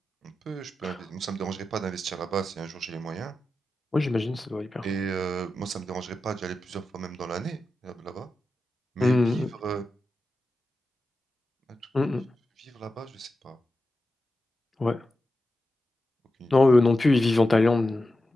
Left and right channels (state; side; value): normal; both; correlation 0.91